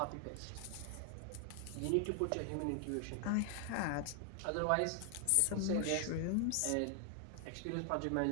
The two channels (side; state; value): both; different; correlation 0.00